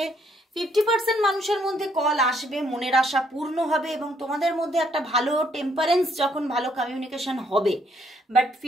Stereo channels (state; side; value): normal; both; correlation 0.70